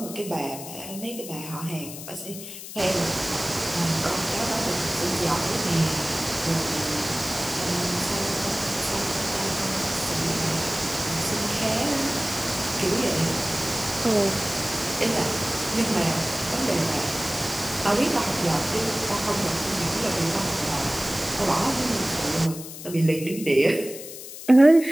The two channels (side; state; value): left; noise; hiss, 12 dB below the sound